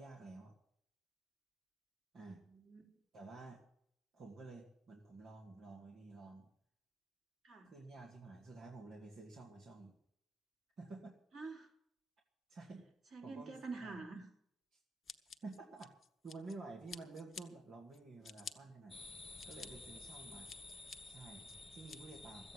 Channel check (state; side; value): normal; both; correlation 0.79